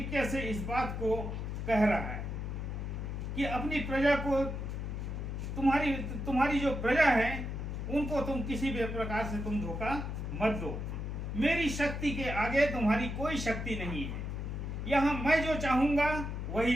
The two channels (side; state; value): left; noise; hum, 4 dB below the sound